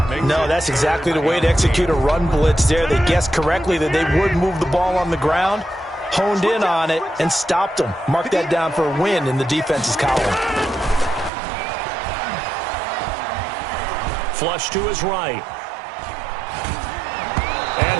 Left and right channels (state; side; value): drops out; left; at 11.3 s